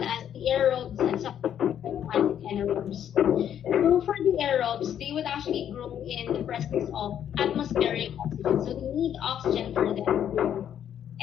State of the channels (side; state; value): right; quieter; 9.7 dB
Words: as the aerobes and anaerobes. So for the aerobes, they would actually grow in the presence of atmospheric oxygen. So they need oxygen for them to grow.